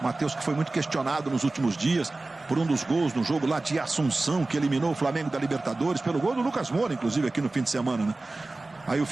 Matheus, que foi muito questionado nos últimos dias por um dos gols no jogo lá de Assunção, que eliminou o Flamengo da Libertadores, pelo gol do Lucas Moura, inclusive, aqui no fim de semana, né? Aí o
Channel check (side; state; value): left; quieter; 3.1 dB